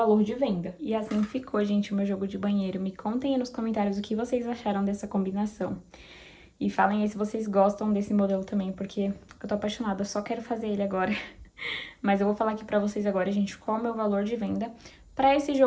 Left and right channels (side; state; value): both; identical; correlation 1.00